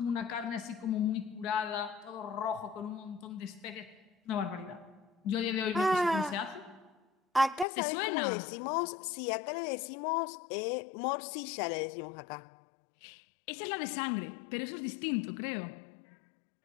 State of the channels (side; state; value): right; drops out; at 7.7 s